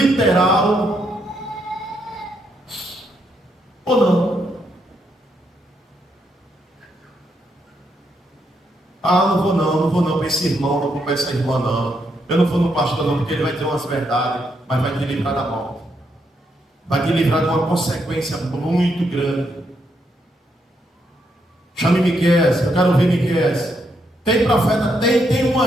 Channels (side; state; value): both; normal; correlation 0.78